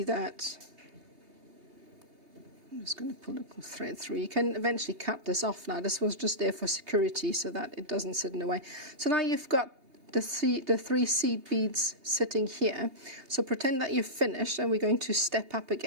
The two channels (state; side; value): late; left; 3.2 ms